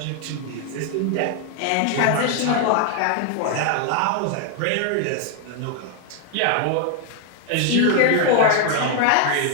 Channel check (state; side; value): different; both; correlation 0.00